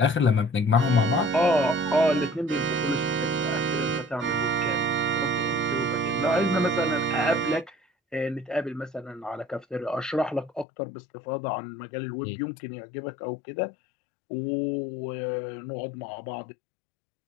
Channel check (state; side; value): drops out; right; at 10.7 s